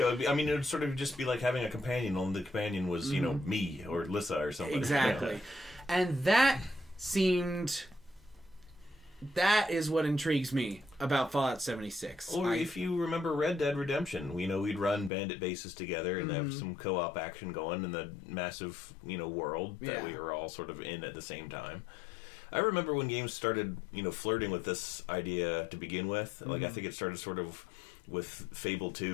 would sort of just be like having a companion, only the companion was, me or Lissa or something. Exactly. And that is what intrigues me about Fallout 76. Or if you remember Red Dead Redemption, we'd run bandit bases together and have some co-op action going in the massive, world that we were all sort of in at the same time. I remember when games started, flirting with this idea to begin with. I think it started sort of with Fable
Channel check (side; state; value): right; drops out; at 15.1 s